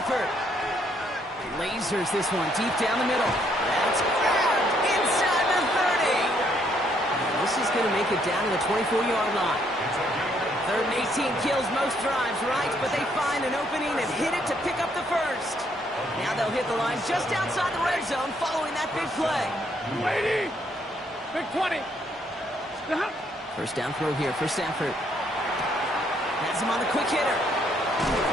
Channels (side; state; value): both; normal; correlation 0.70